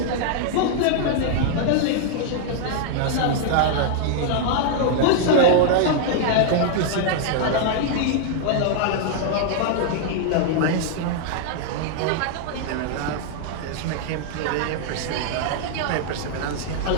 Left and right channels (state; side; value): different; both; correlation -0.01